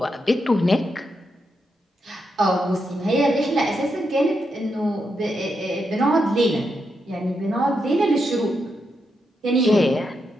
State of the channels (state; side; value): normal; both; correlation 0.83